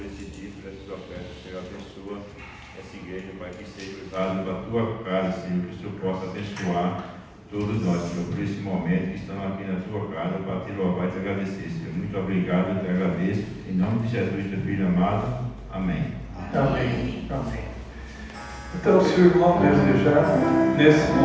esse dia, por essa tua oferta, Senhor, abençoa essa igreja, Pai, que seja usada para a tua casa, Senhor, que o Senhor possa abençoar todos nós, Senhor, por esse momento que estamos aqui na tua casa para te louvar e te agradecer, Senhor. Muito obrigado, eu te agradeço, em nome de Jesus, teu filho amado, amém. Amém. Amém. Então, se o irmão desejar, nesse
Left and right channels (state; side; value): identical; both; correlation 1.00